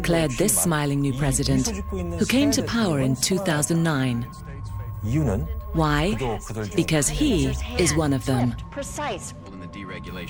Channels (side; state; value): both; identical; correlation 1.00